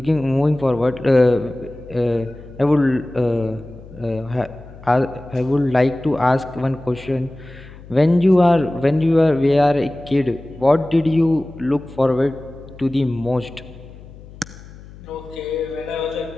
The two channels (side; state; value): left; noise; hum, 19 dB below the sound